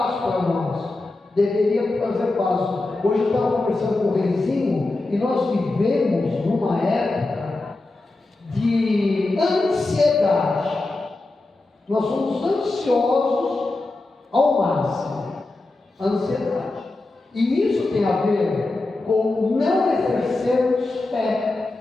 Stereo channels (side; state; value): right; quieter; 3.1 dB